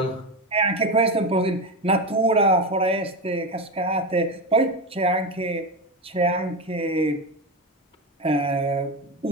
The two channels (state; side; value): normal; both; correlation 0.17